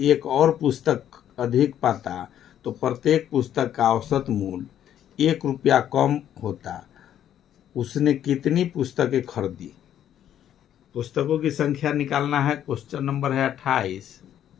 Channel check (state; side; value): quieter; right; 10.6 dB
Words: और पुस्तक अधिक पाता तो प्रत्येक पुस्तक का औसत मूल्य 1 रुपया कम होता। उसने कितनी पुस्तकें खरीदी? पुस्तकों की संख्या निकालना है। क्वेश्चन नंबर है